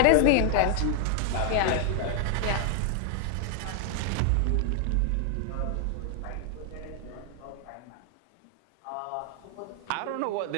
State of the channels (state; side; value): different; both; correlation 0.00